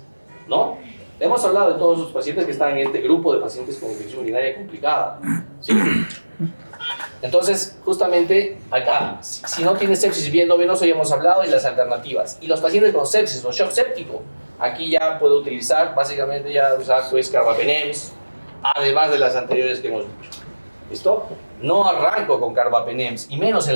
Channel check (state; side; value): inverted; both; correlation -1.00